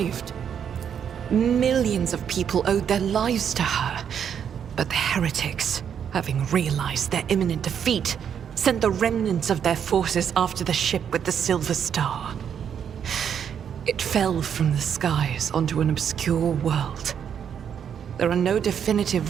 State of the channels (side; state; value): left; quieter; 8.2 dB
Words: Millions of people owed their lives to her, but the heretics, having realized their imminent defeat, sent the remnants of their forces after the ship with the Silver Star. It fell from the skies onto an obscure world. There are no